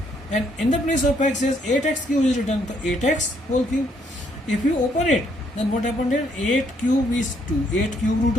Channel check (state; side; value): normal; both; correlation 0.70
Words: and in the place of x is 8x cube is written, so 8x whole cube. If you open it, then what happened here, 8 cube is 2, 8 cube root